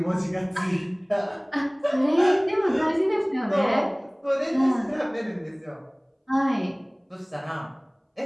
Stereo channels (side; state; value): both; identical; correlation 1.00